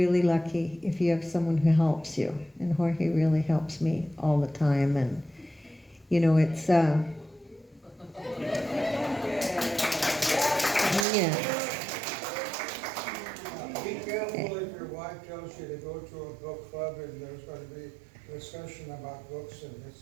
lucky if you have someone who helps you. And Jorge really helps me all the time. And, it's, yeah. Be careful if your wife tells you to go to a book club and there's going to be a discussion about books, and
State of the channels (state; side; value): drops out; left; at 11.1 s